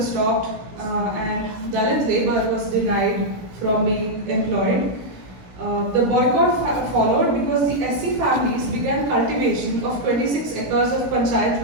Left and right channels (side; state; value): left; late; 16 ms